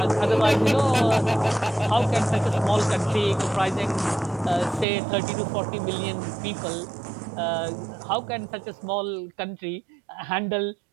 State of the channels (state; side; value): drops out; left; at 4.9 s